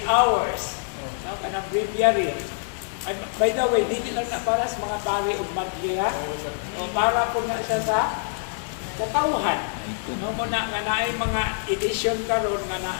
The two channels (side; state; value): right; silent; digital silence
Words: Hours. Kanang breviary. And by the way, hindi lang na para sa mga pari o madliya. O para po na siya sa katawhan. No, muna nga naay mga edition karon nga